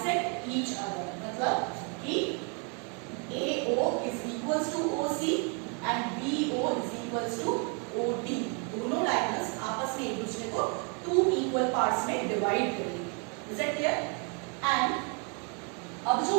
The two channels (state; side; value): quieter; left; 36.8 dB